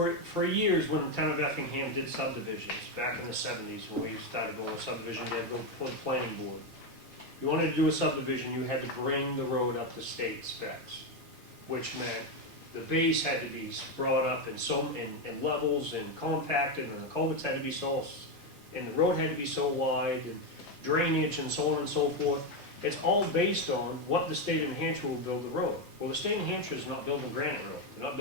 years, when the town of Effingham did subdivisions, back in the 70s, when we started going with subdivision, they had to go before the planning board. you wanted to do a subdivision, you had to bring the road up to state specs, which meant the base had to be brought up in levels and compacted, and the culverts had to be so, and the road had to be so wide, and drainage and so on and so forth. It's all based on what the state of New Hampshire will build the road. Well, the state of New Hampshire is not building Granite Road, they're not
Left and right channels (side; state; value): both; normal; correlation 0.09